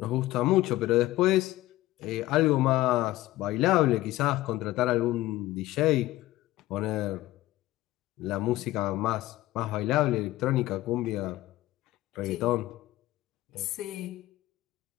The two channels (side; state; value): right; quieter; 16.7 dB